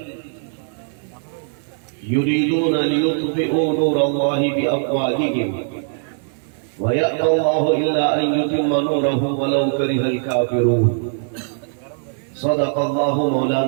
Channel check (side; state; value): left; silent; digital silence